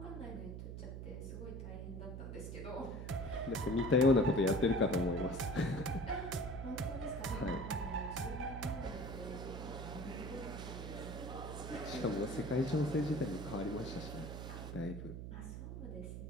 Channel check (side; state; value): right; noise; hum, 7 dB below the sound